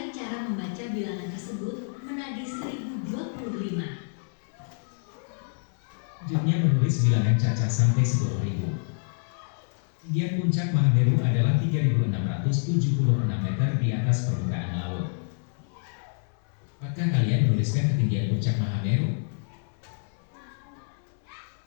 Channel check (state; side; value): silent; right; 60 dB below the other